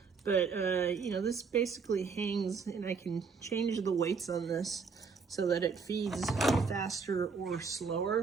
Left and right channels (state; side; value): quieter; left; 5.3 dB